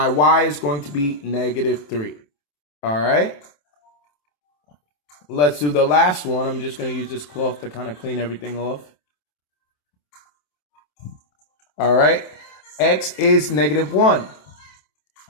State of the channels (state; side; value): late; right; 27 ms